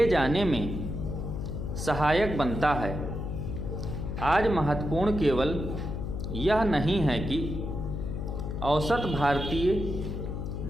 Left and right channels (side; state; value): left; noise; hum, 4 dB below the sound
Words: जाने में सहायक बनता है। आज महत्वपूर्ण केवल यह नहीं है कि औसत भारतीय